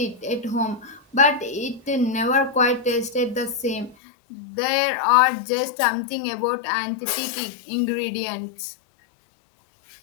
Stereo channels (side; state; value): right; drops out; at 4.0 s